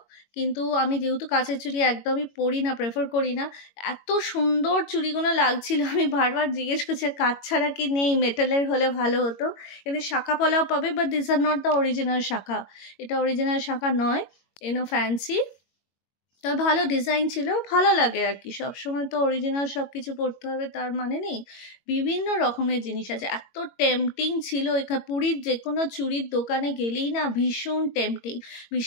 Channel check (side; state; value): right; late; 21 ms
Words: কিন্তু আমি যেহেতু কাঁচের চুড়ি একদমই পরি না, প্রেফার করি না। এত সুন্দর চুড়িগুলো লাগছিল, আমি বারবার জিজ্ঞেস করছি কাঁচ ছাড়া কি নেই, মেটালের হলে ভালো হতো। কিন্তু শাখা পলাও পাবে, but this are not the original শাখা। এটা অরিজিনাল শাখা নয়, এনো ফ্যান্সি। তবে ভালো ডিজাইন ছিল, ভালো লাগে আর কি। সবসময় তো অরিজিনাল সব কিছু পড়তে হবে তার মানে নেই, বিভিন্ন রকমের জিনিস আছে। এত টেম্পটিং ছিল এখানে, পুরীর যে কোনো চুড়ির দোকানে গেলেই না ভীষণ টেম্পটিং।